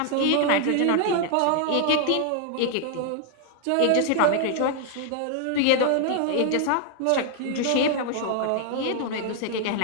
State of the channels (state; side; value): different; both; correlation 0.00